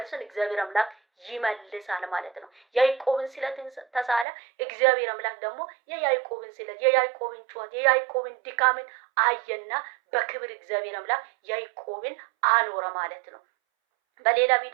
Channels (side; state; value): left; drops out; at 4.2 s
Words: እግዚአብሔር አምላክ ይመልሳል ማለት ነው። ያዕቆብን ስለትን ተሳለ፣ እግዚአብሔር አምላክ ደግሞ የያዕቆብን ስለት፣ የያዕቆብን ጩኸት፣ የያዕቆብን ድካምን አየና በክብር እግዚአብሔር አምላክ ያዕቆብን አኖረ ማለት ነው። በሌላ